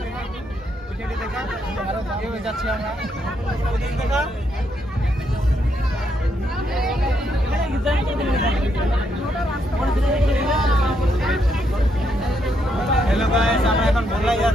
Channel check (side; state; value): both; normal; correlation 0.77